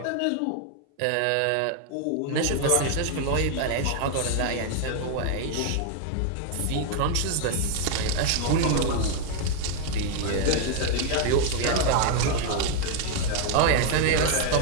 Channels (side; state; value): both; different; correlation 0.00